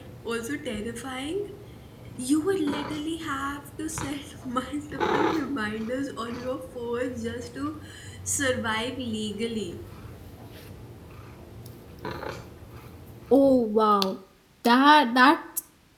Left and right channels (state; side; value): identical; both; correlation 1.00